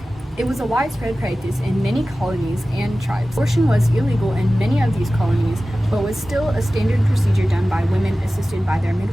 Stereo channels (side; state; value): both; normal; correlation 0.96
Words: It was a widespread practice in many colonies and tribes. Abortion was illegal in many of these colonies, but was still a standard procedure done by women assisted by their